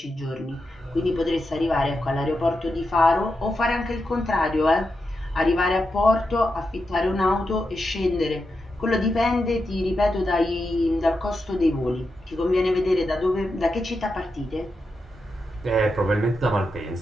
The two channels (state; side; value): normal; both; correlation 0.87